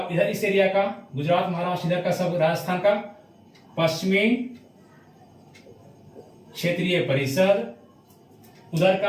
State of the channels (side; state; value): both; identical; correlation 1.00